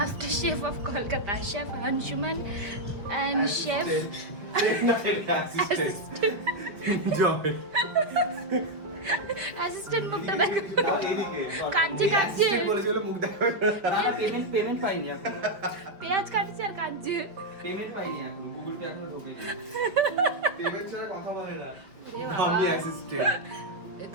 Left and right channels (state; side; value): late; left; 5.2 ms